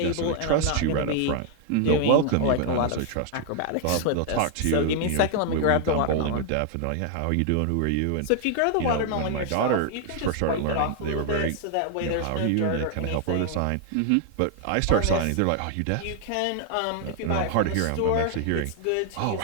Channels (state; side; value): different; both; correlation 0.00